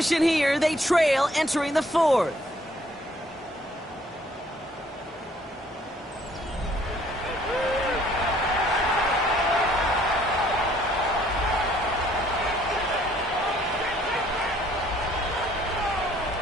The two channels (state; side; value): normal; both; correlation 0.62